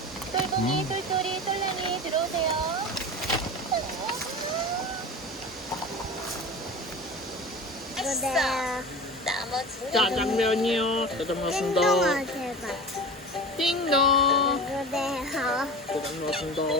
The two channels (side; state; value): both; normal; correlation 0.32